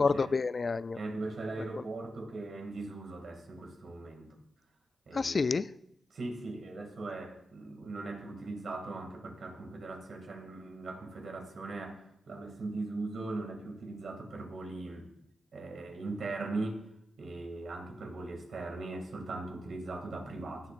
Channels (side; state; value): both; normal; correlation 0.88